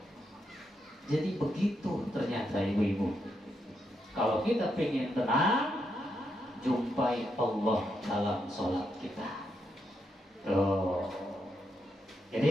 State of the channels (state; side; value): normal; both; correlation 0.81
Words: Jadi begitu ternyata ibu-ibu. Kalau kita pengen tenang, jumpai Allah dalam sholat kita. Tuh.